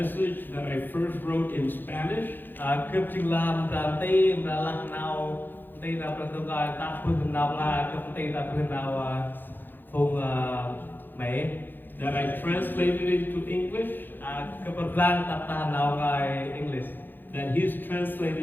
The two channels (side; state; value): right; late; 0.093 ms